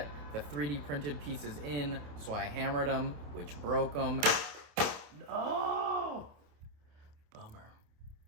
the 3D printed pieces in, so I hammered them, which broke them. No! Bummer.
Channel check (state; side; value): late; left; 28 ms